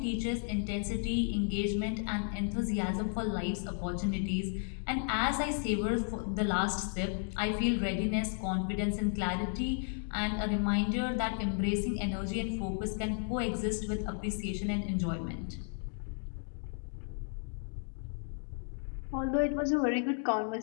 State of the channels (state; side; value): silent; right; 55 dB below the other